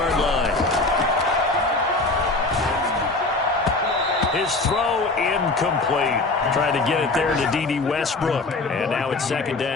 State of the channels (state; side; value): quieter; right; 3.3 dB